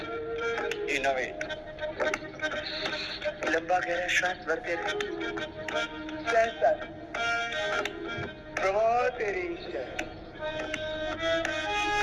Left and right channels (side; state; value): both; identical; correlation 1.00